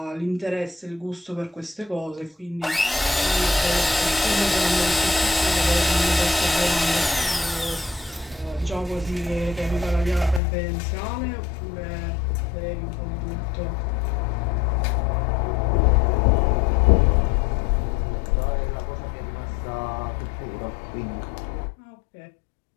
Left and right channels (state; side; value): drops out; right; at 10.4 s